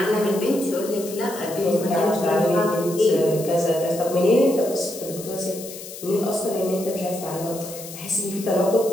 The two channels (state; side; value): noise; left; hiss, 13 dB below the sound